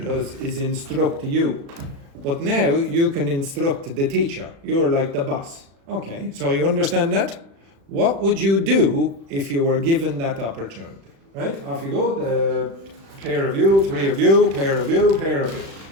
is instruct you, but now you can instruct the teacher. You're like the boss. Okay, so you understand that? What would you do if you were given that opportunity? Right, off you go, the pair of you, three of you, pair of you, pair of you.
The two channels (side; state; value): left; late; 36 ms